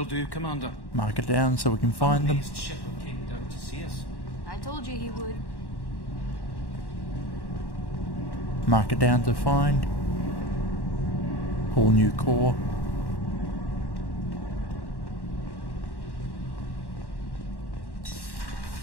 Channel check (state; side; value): late; right; 1.1 ms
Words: do, Commander. Mark it down so we can find them. Shepard came down to see us. I told you he would. Mark it down to find. Whole new core.